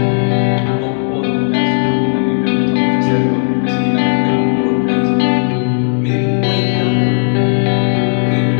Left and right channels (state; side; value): silent; right; digital silence